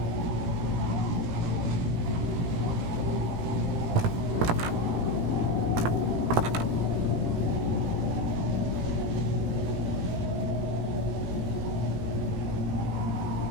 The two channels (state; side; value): late; left; 17 ms